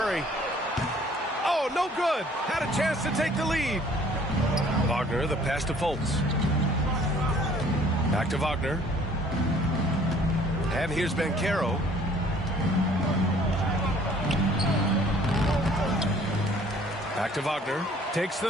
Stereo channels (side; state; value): both; normal; correlation 0.56